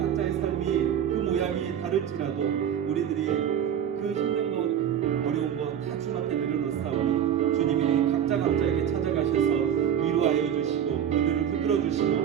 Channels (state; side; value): quieter; left; 9.2 dB